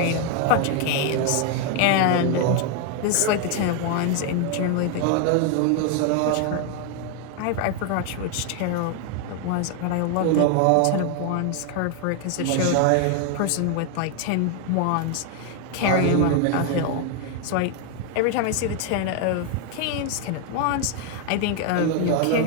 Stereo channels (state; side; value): different; both; correlation 0.01